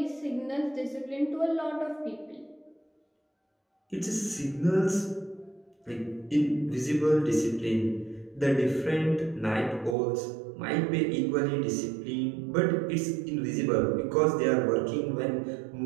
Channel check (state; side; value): drops out; left; at 10.0 s